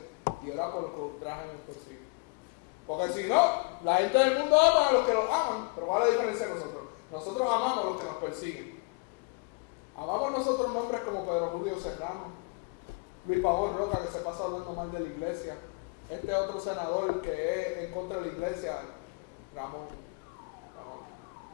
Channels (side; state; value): right; quieter; 30.2 dB